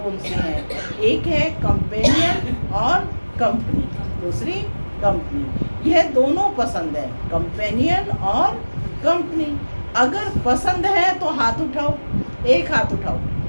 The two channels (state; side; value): inverted; both; correlation -1.00